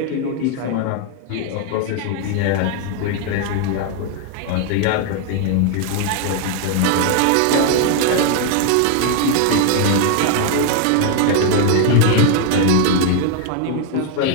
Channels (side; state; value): both; different; correlation 0.00